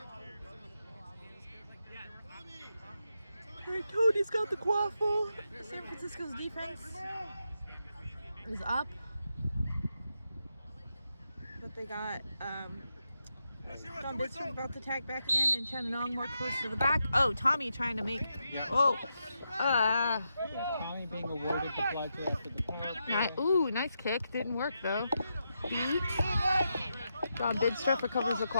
Hey, Tony's got the quaffle. San Francisco's defense is up. But they got John Bidstrup about to tag back in, and Chananong more close to the back. Oh, Tommy trying to make. Yeah. Oh. Tommy being awarded the bludger after the power play. Ooh, nice kick. Didn't work though. Beat. John Bidstrup recovers the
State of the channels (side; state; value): both; inverted; correlation -0.85